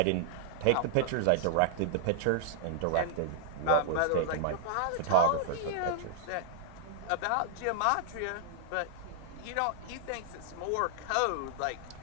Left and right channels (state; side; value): different; both; correlation -0.01